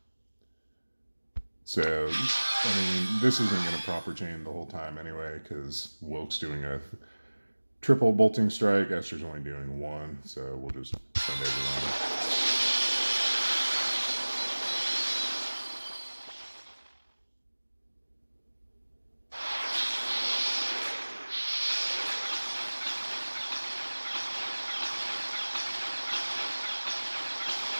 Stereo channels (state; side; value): inverted; both; correlation -1.00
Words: So, I mean, this isn't going to proper chain the whole time anyway, because Wylk's doing a triple bolting strike, Esther's only doing 1, so we'll just send everyone.